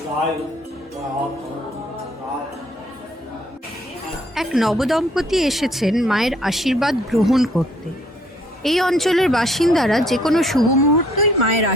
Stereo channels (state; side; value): normal; both; correlation 0.64